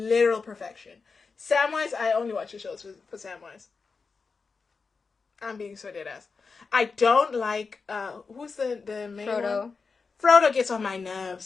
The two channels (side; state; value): right; quieter; 4.7 dB